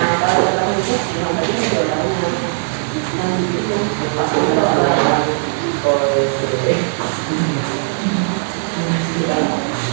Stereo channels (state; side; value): silent; left; 67 dB below the other